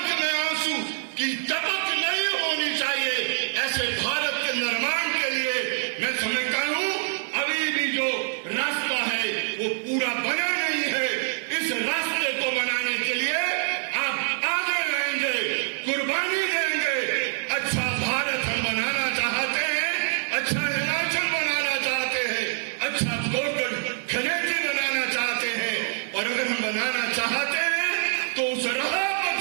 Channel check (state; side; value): silent; left; 61 dB below the other